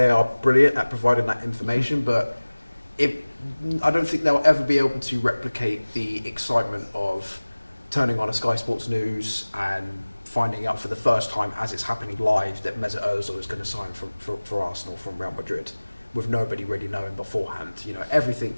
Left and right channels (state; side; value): inverted; both; correlation -1.00